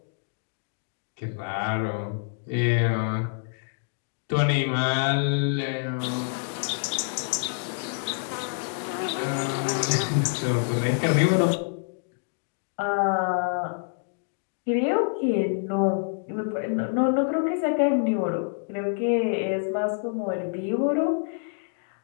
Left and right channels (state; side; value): silent; right; digital silence